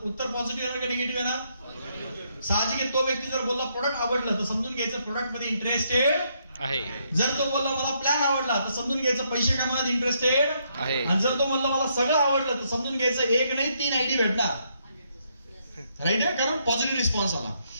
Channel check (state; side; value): inverted; both; correlation -0.74